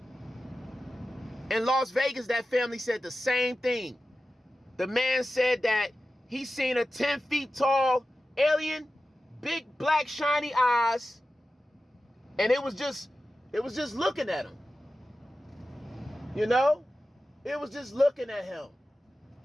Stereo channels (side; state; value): both; normal; correlation 0.94